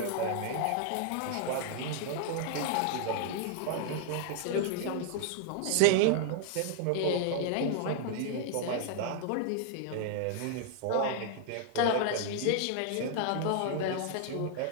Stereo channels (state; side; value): different; both; correlation 0.00